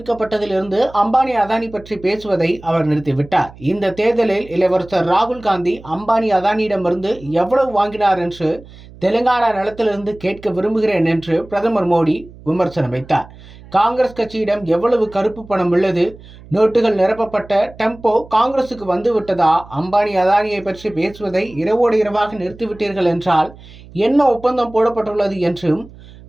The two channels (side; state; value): right; noise; hum, 20 dB below the sound